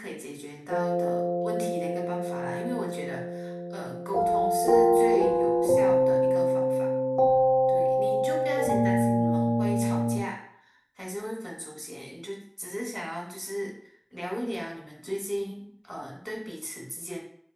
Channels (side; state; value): both; identical; correlation 1.00